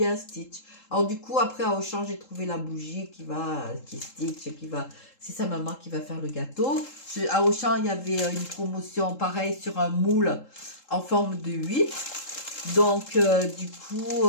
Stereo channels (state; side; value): late; right; 3.7 ms